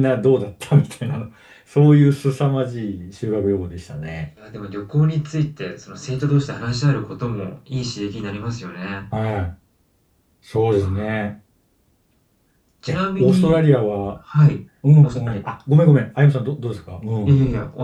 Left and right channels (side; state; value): both; identical; correlation 1.00